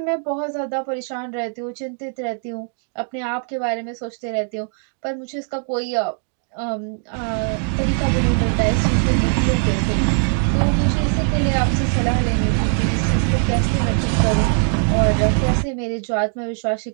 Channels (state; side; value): silent; left; 57 dB below the other